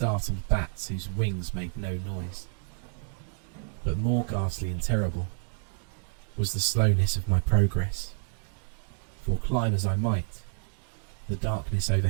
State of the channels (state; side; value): silent; left; 58 dB below the other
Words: bats whose wings made no noise. But more ghastly and terrible was the slowness of my progress, for climb as I might, the darkness